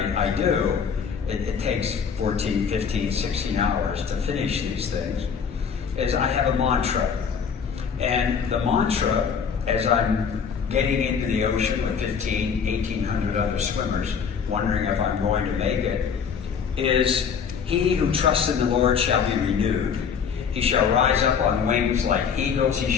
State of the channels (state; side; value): quieter; right; 6.7 dB